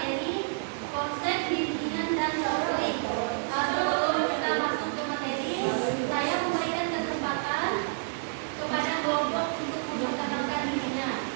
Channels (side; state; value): left; silent; 59 dB below the other